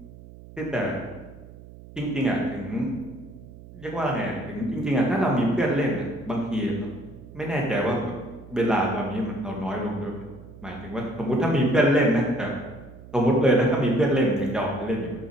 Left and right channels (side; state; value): right; noise; hum, 18 dB below the sound